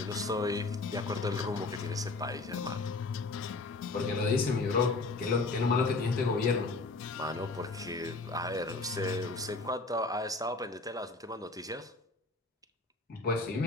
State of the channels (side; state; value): right; quieter; 3.4 dB